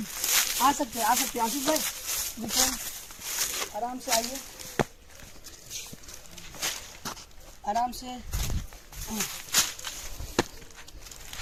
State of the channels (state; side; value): identical; both; correlation 1.00